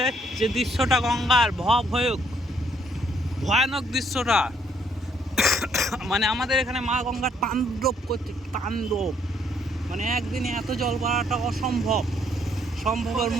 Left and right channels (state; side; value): normal; both; correlation 0.68